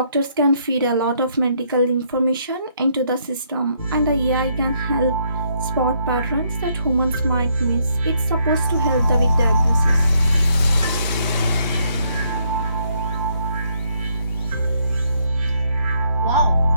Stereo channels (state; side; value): inverted; both; correlation -0.71